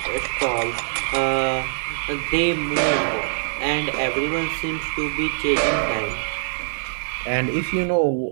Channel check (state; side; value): silent; left; digital silence